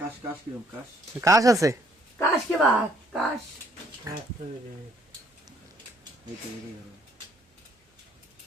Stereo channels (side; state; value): both; normal; correlation 0.65